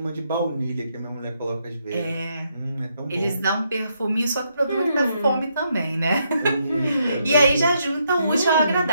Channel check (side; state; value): both; inverted; correlation -0.77